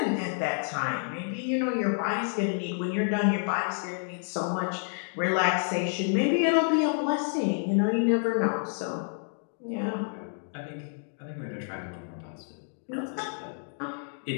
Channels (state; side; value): silent; right; 58 dB below the other